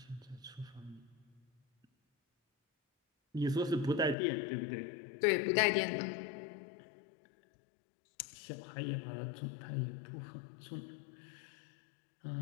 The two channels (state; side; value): drops out; right; at 4.2 s